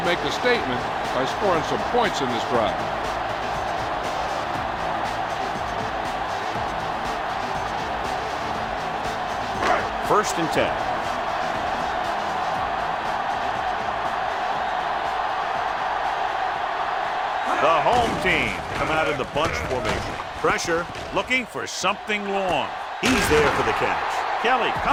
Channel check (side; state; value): both; identical; correlation 1.00